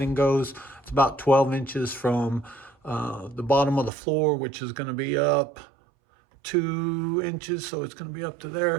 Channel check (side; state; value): left; drops out; at 3.9 s